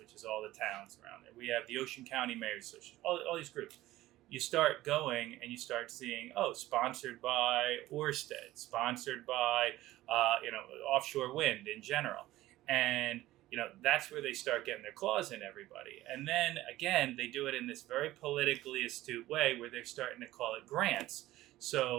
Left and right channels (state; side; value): quieter; left; 16.3 dB